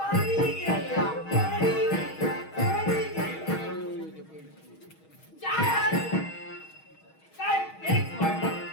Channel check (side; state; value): right; late; 6.3 ms